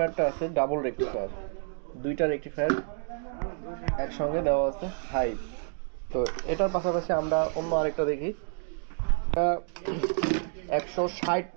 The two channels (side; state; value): left; silent; 58 dB below the other